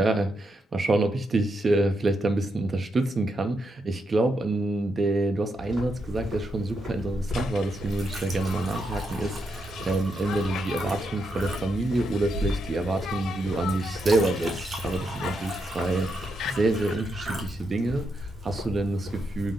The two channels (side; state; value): both; normal; correlation 0.82